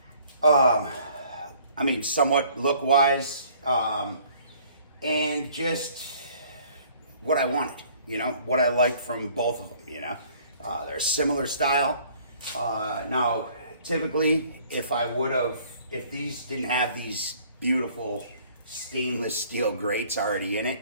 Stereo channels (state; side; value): inverted; both; correlation -0.57